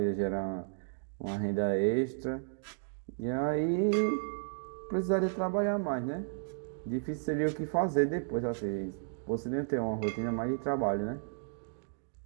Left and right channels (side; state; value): left; silent; digital silence